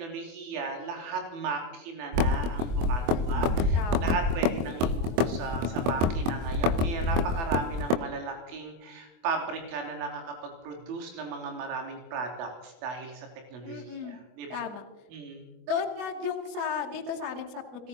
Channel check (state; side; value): late; left; 24 ms